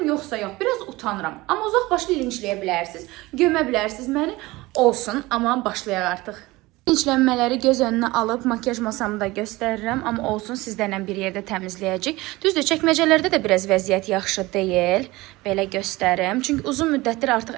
yoxsa yox. Biraz utanıram. Amma uzaq başlı linçləyə bilərsiniz. Gömə bilərsiniz məni. Olsun, amma başlayaq artıq. İnclənmələri göz önünə alıb makyaj masamı da göstərirəm, amma olsun sizlərlə bir yerdə təmizləyəcək. Düzdür, çəkməcələrdə də biraz vəziyyət yaxşı deyil. Belə göstərim. Çünki uzun müddətdir artıq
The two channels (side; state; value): left; quieter; 20.4 dB